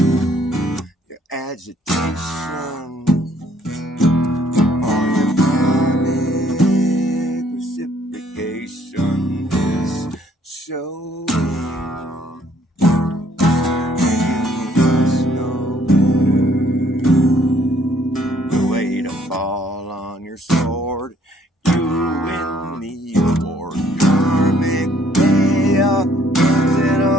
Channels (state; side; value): normal; both; correlation 0.64